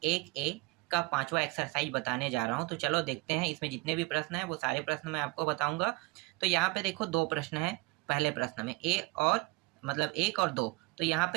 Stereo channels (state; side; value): quieter; left; 23.9 dB